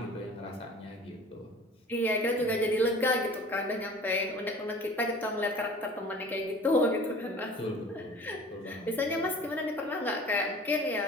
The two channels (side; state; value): both; normal; correlation 0.44